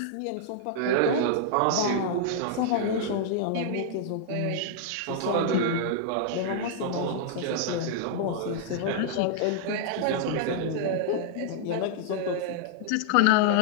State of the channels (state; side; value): different; both; correlation -0.01